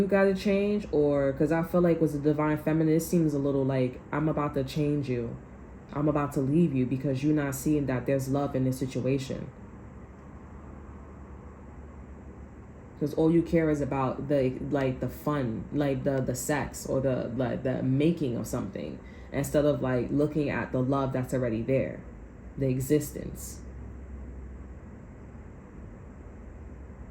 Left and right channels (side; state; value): both; identical; correlation 1.00